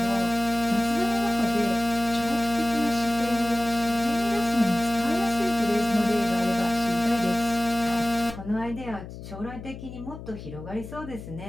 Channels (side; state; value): left; noise; hum, 12 dB below the sound